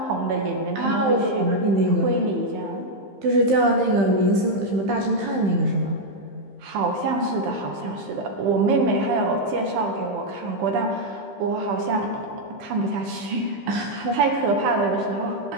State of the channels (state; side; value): late; left; 15 ms